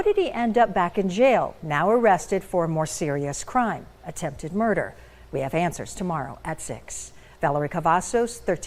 did he end up back in jail, now arrested for a more serious crime, attempted murder? We have answers tomorrow at 6. Valerie Cavazos,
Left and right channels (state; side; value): identical; both; correlation 1.00